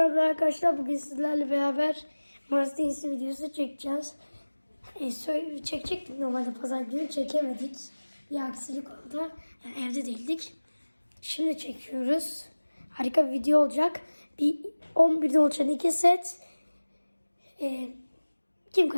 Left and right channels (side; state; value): both; inverted; correlation -1.00